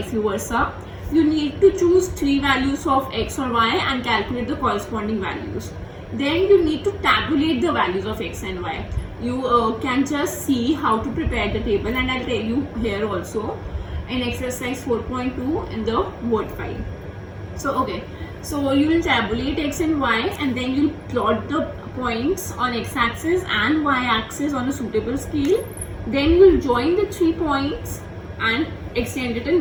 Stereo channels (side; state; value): both; identical; correlation 1.00